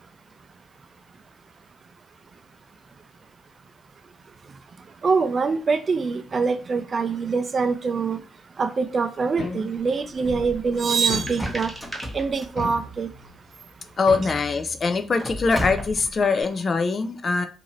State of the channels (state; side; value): normal; both; correlation 0.83